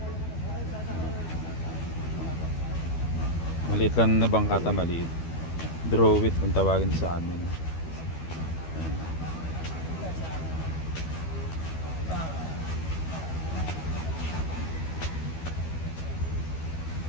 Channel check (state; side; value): late; right; 12 ms